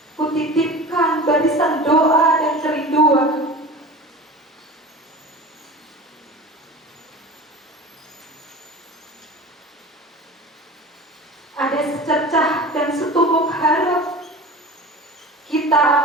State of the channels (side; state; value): both; normal; correlation 0.35